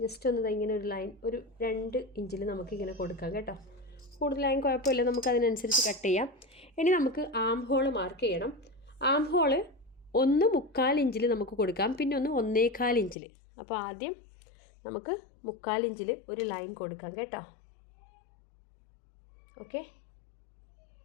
ജസ്റ്റ് ഒന്ന് ഇങ്ങനെ ഒരു ലൈൻ ഒരു 2 ഇഞ്ചിൽ നമുക്കിങ്ങനെ കൊടുക്കാം കേട്ടോ. കൂടുതലായും കുഴപ്പമില്ല, നമുക്കതിനനുസരിച്ച് കട്ട് ചെയ്യാം. ഇനി നമുക്ക് ആം ഹോൾ മാർക്ക് ചെയ്യണം. ആം ഹോള് 1.25 ഇഞ്ചിൽ നമുക്ക് കൊടുക്കാം, പിന്നെ 1.25 ഇഞ്ചിൽ. അപ്പോൾ ആദ്യം നമുക്ക് 1/4 ഇഞ്ചിൽ ഒരു ലൈൻ കൊടുക്കാം കേട്ടോ. ഓക്കെ,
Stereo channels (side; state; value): right; drops out; at 13.2 s